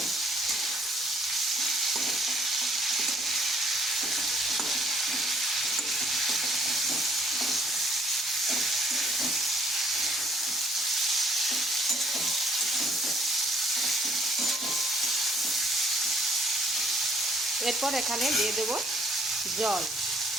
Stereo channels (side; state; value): both; normal; correlation 0.62